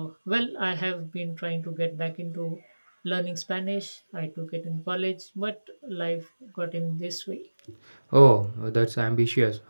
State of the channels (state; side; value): inverted; both; correlation -1.00